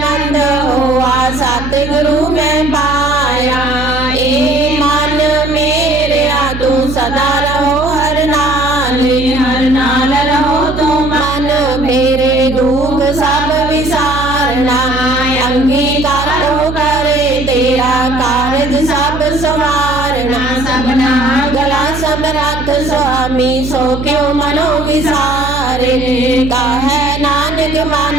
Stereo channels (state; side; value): noise; right; hum, 8 dB below the sound